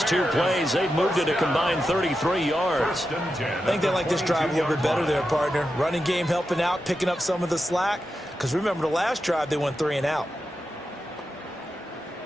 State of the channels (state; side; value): normal; both; correlation 0.89